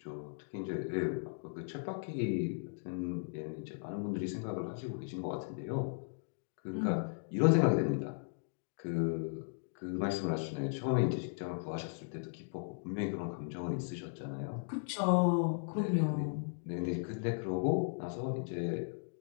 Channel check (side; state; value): right; silent; digital silence